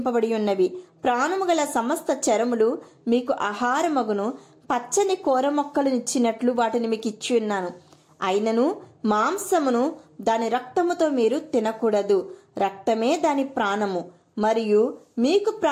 ఉన్నవి. ప్రాణము గల సమస్త చరములు మీకు ఆహారమగును. పచ్చని కూర మొక్కలు ఇచ్చినట్లు వాటిని మీకు ఇచ్చి ఉన్నాను. అయినను మాంసమును దాని రక్తముతో మీరు తినకూడదు. రక్తమే దాని ప్రాణము. మరియు మీకు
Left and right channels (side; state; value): both; identical; correlation 1.00